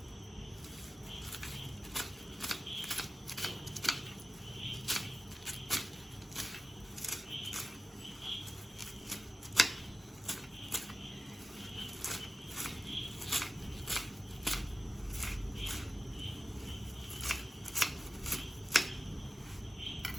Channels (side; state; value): both; normal; correlation 0.95